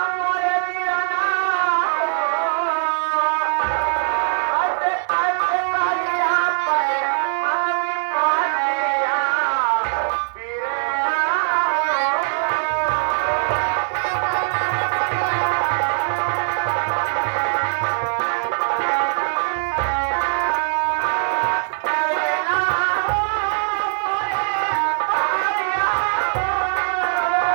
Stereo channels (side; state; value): left; silent; 63 dB below the other